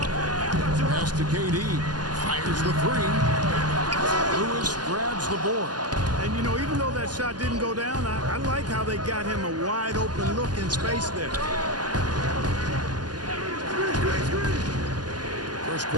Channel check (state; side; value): late; left; 0.70 ms